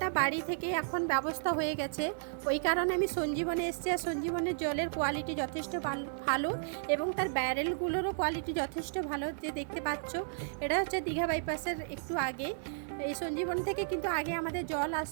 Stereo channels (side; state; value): left; silent; digital silence